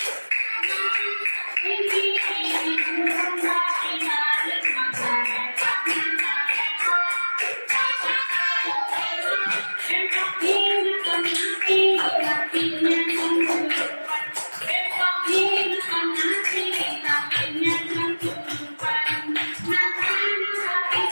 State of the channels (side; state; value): both; inverted; correlation -1.00